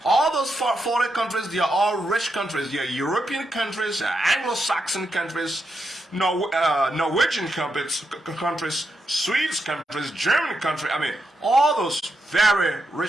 All those 40 countries, they are all rich countries. They are European countries, Anglo-Saxon countries, Norwegian countries, Swedes countries, German countries. I mean, all those very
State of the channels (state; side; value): normal; both; correlation 0.84